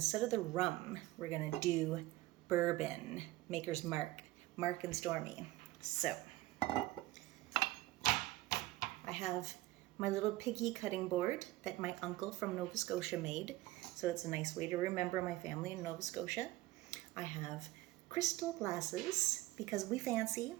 of the rum, we're gonna do bourbon, Maker's Mark, Mark and Stormy. So, I have my little piggy cutting board that my uncle from Nova Scotia made. So it's a nice way to remember my family in Nova Scotia. I have crystal glasses because we fancy.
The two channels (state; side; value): quieter; left; 17.9 dB